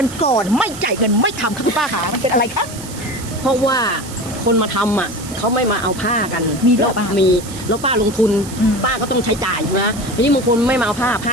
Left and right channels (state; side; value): noise; right; hiss, 14 dB below the sound